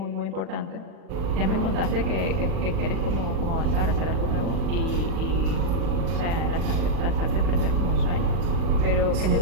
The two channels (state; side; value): late; left; 40 ms